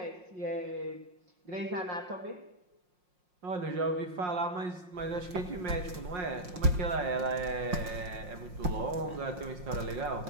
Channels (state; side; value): late; left; 5.6 ms